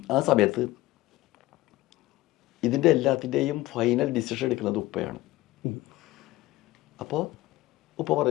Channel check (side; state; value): right; quieter; 17.7 dB